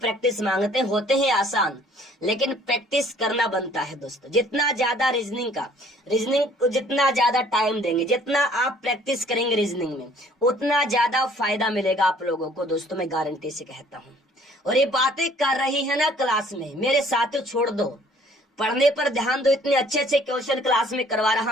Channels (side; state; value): both; normal; correlation 0.57